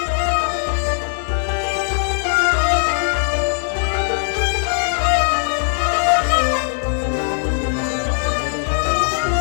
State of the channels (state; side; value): silent; right; digital silence